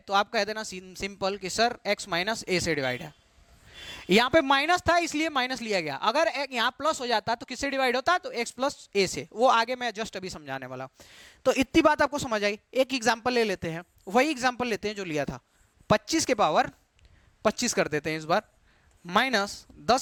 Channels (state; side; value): identical; both; correlation 1.00